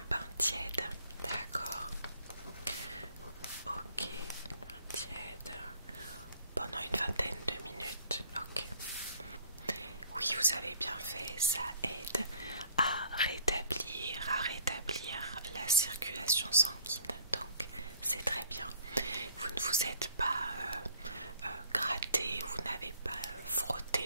bain tiède, d'accord? Ok, bain tiède pendant une vingtaine de minutes, ok. Oui, vous avez bien fait, ça aide à rétablir la circulation sanguine, donc c'est très bien. Vous ne vous êtes pas gratté, vous n'avez pas frotté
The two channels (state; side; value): inverted; both; correlation -0.58